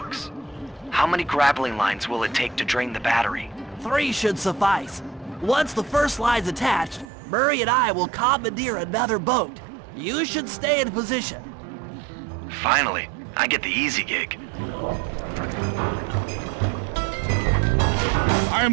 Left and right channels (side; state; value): left; drops out; at 7.1 s